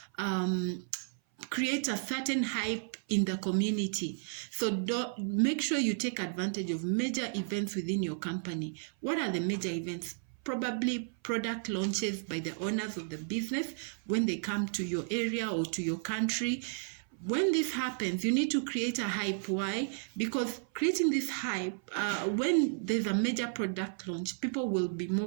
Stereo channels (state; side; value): silent; left; 56 dB below the other